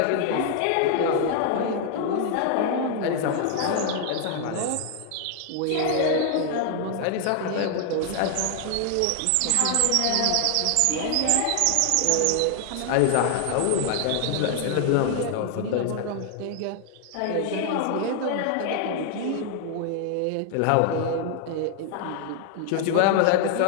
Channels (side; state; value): both; different; correlation 0.00